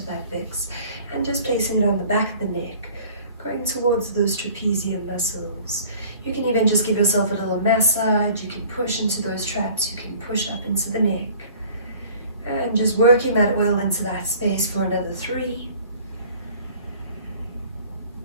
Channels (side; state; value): both; inverted; correlation -0.50